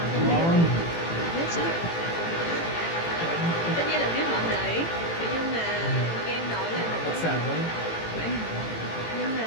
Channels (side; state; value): right; late; 18 ms